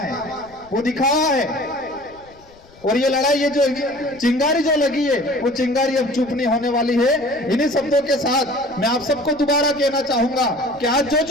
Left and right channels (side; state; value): left; noise; rumble, 26 dB below the sound